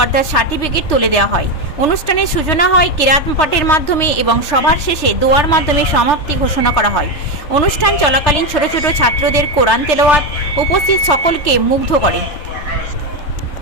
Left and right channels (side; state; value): right; late; 3.3 ms